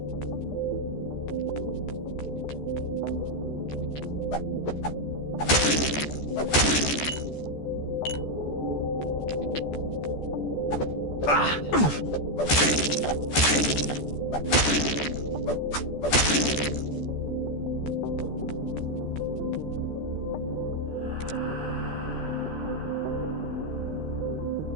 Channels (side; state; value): right; late; 14 ms